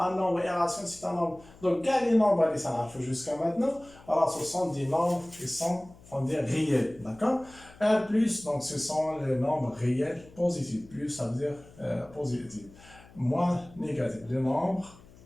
un nombre irrationnel c'est un nombre, donc quand les nombres les ça jusqu'à maintenant, alors ce sont des nombres qui sont on dit réels, d'accord. Un plus donc ce sont les nombres réels positifs, plus ça veut dire positif, moins négatif, les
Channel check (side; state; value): left; noise; hum, 23 dB below the sound